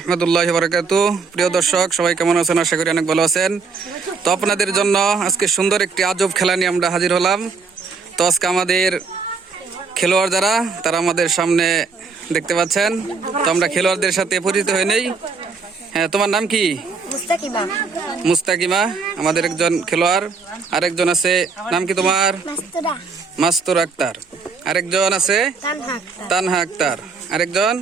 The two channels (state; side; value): quieter; left; 4.8 dB